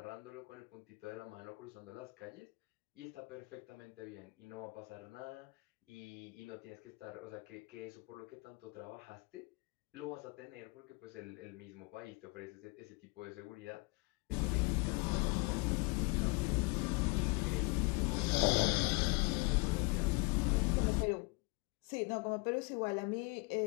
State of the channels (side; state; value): right; quieter; 28.1 dB